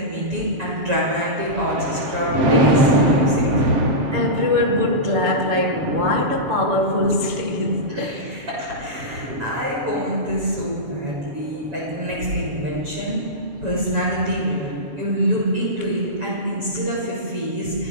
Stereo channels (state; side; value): late; left; 7.1 ms